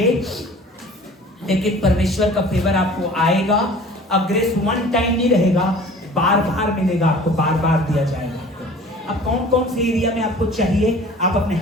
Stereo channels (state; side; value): normal; both; correlation 0.45